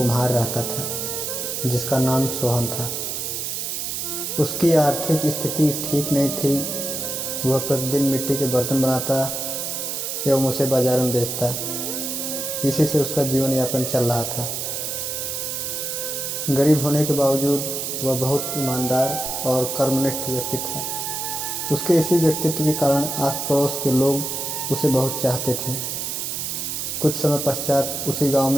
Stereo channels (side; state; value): right; noise; hiss, 3 dB below the sound